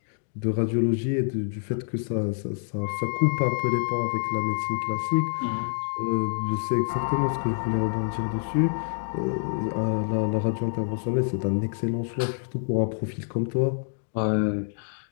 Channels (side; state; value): right; silent; digital silence